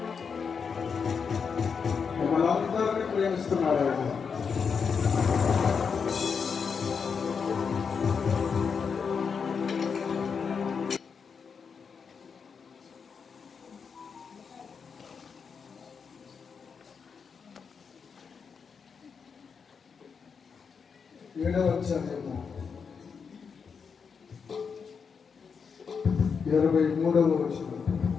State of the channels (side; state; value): right; quieter; 6.0 dB